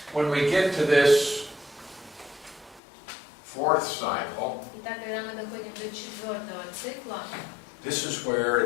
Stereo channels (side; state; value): right; drops out; at 2.8 s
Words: when we get to this fourth cycle, Итак, когда мы доходим до 4-го цикла, this is where